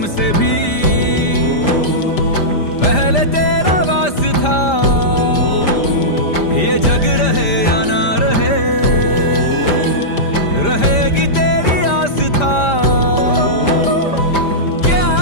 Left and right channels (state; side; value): late; right; 5.0 ms